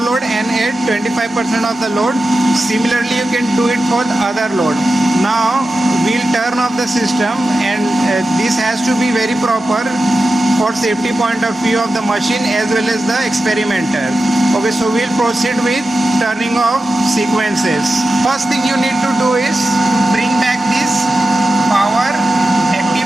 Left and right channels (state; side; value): normal; both; correlation 0.92